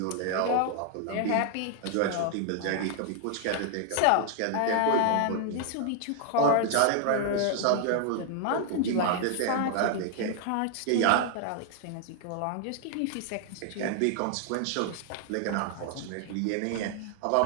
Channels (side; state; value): both; different; correlation 0.00